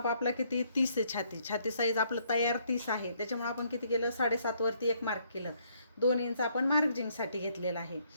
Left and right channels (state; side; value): inverted; both; correlation -0.69